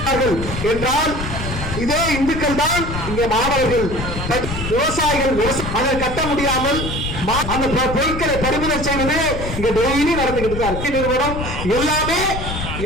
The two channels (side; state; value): left; noise; rumble, 6 dB below the sound